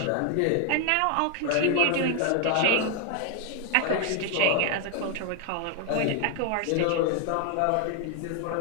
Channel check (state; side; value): different; both; correlation 0.00